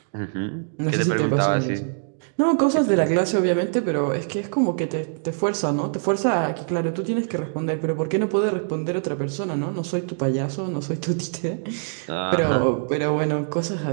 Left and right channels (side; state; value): left; silent; digital silence